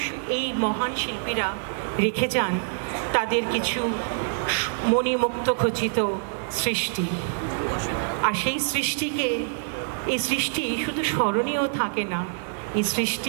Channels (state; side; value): silent; left; 61 dB below the other